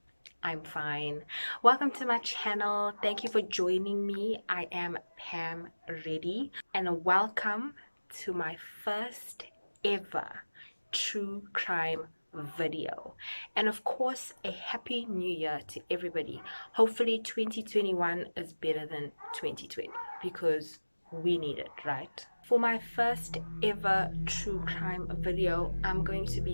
I'm fine. Welcome to my channel. Thank you for joining me. I am Pam Reddy, and welcome to my first ever true crime video. And of course, a happy new year to everybody. Hopefully 2021 is better than 2020 because we need it, right? For my first ever true crime video, I'm going to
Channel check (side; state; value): both; inverted; correlation -1.00